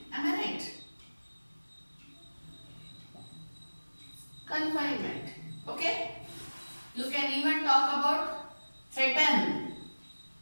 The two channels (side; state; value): both; inverted; correlation -1.00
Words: Am I right? Confinement. Okay? You can even talk about threaten,